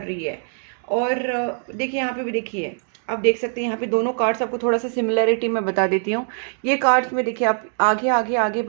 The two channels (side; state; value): left; silent; 57 dB below the other